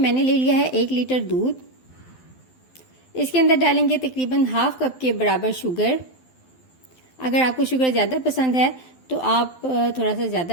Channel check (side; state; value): right; late; 12 ms